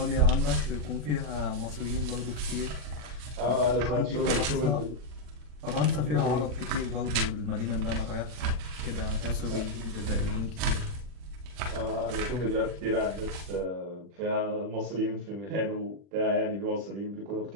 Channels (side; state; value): left; late; 40 ms